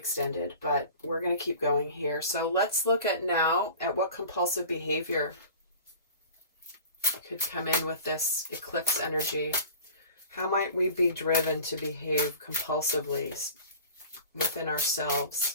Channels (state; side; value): inverted; both; correlation -0.40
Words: but we're going to keep going here. So let's look at now at what compulsive behavior could come in with this eclipse energy. How might we be driven to behave compulsively within ourselves